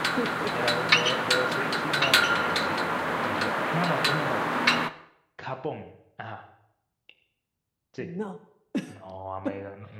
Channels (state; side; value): identical; both; correlation 1.00